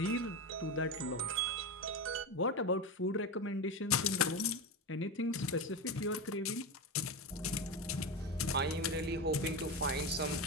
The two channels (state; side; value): normal; both; correlation 0.17